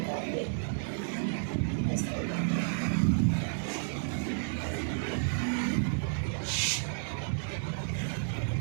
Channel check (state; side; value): silent; left; 57 dB below the other